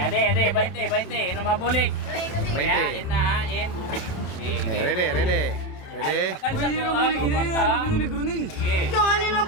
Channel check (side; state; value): right; late; 27 ms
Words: adi, 20. Ano mabulik? 20. In na. Ready. Pakalsa ko ako kwarta. Okay. Ano na